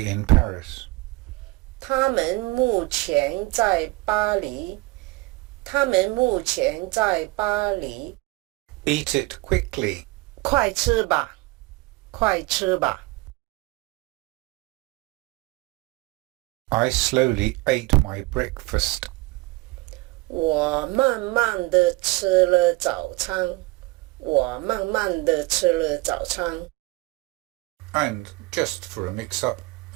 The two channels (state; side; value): quieter; left; 22.9 dB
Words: in Paris. 他们目前在巴黎。他们目前在巴黎。Eat it quickly. 快吃吧，快吃吧。I slowly ate my breakfast. 我慢慢地吃了早餐。我慢慢地吃了早餐。And just for a mix-up,